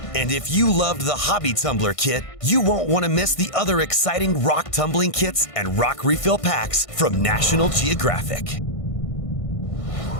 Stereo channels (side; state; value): right; late; 1.5 ms